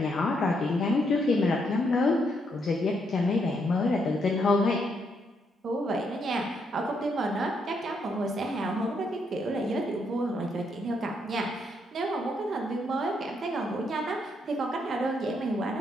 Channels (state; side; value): normal; both; correlation 0.76